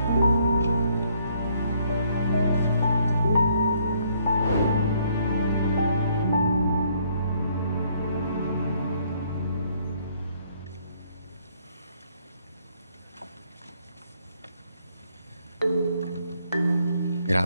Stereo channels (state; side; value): inverted; both; correlation -0.68